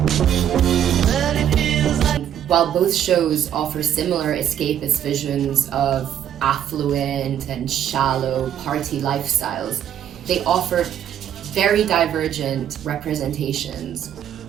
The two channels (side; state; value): left; quieter; 10.0 dB